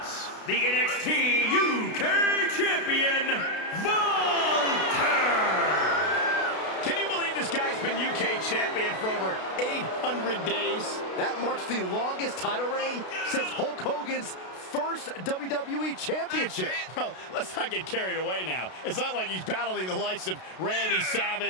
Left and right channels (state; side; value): late; right; 32 ms